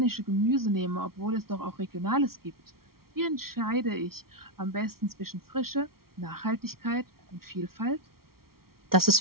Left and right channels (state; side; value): late; left; 0.94 ms